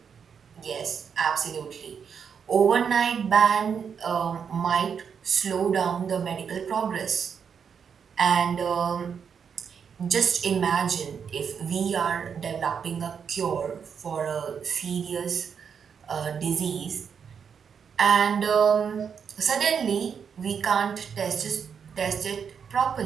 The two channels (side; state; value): left; quieter; 6.9 dB